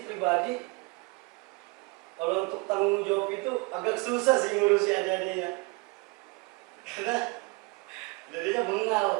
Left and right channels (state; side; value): quieter; left; 27.8 dB